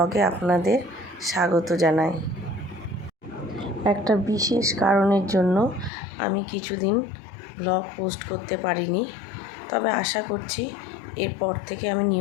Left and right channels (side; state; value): right; drops out; at 5.9 s